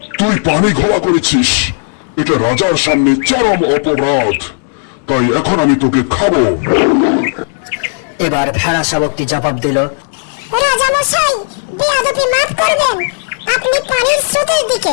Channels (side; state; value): right; silent; digital silence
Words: তুই পানি ঘোলা করেছিস, এটা রাজার সামনে চরম অপরাধ, তাই এখন আমি তোকে খাবো। এবার ভেড়া শাবকটি জবাব দিল, রাজা মশাই, বেয়াদবি মাফ করবেন। আপনি পানির স্রোতের